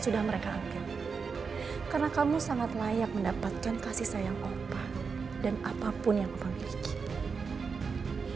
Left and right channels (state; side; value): quieter; left; 5.3 dB